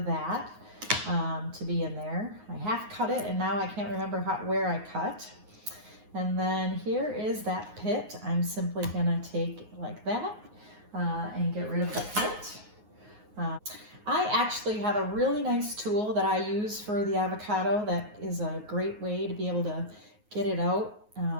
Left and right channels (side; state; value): left; late; 9.5 ms